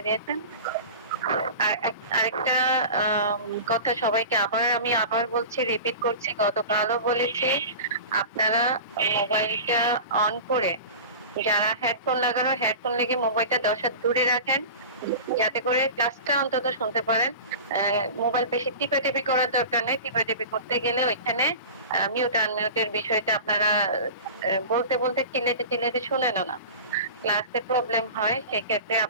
দিয়েছেন। আরেকটা কথা সবাইকে আমি আবার বলছি, রিপিট করছি, গতকালও বলেছি, আপনারা মোবাইলটা অন করে যারা হেডফোন লাগানো হেডফোন লেগে মোবাইলটা 10 হাত দূরে রাখেন, যাতে করে ক্লাসটা অন্তত শুনতে পারেন। মোবাইল বেশি টিপাটিপি করার দরকার নেই। টিপাটিপি করতে গেলে ওইখানে মিউট আনমিউটের বিষয়টা আপনারা বলতে বলতে চিল্লাতে শুনেন না, ক্লাসে প্রবলেম হয়। সেক্ষেত্রে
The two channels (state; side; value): inverted; both; correlation -0.33